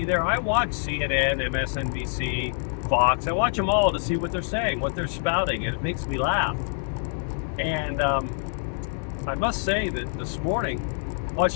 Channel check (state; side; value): silent; right; digital silence